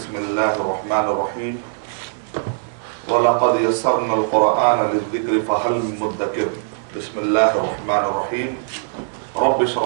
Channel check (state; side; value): silent; left; digital silence